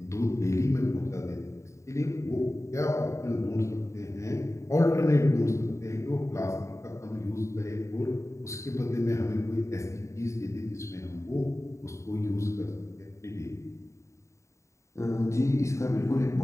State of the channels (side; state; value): right; late; 0.14 ms